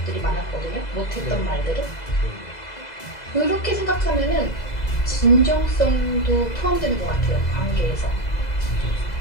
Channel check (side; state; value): right; late; 2.0 ms